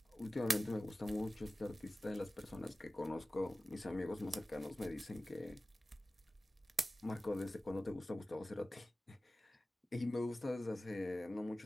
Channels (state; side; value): normal; both; correlation 0.96